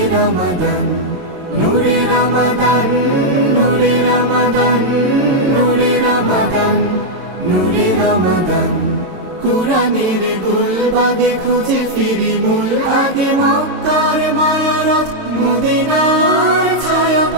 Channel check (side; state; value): left; late; 22 ms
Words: রমাদান, নূরে রমাদান, নূরে রমাদান, নূরে রমাদান, নূরে রমাদান। কুরআনের গুলবাগে খুঁজে ফিরি মূল আগে, মক্কার মায়ারথ মদিনার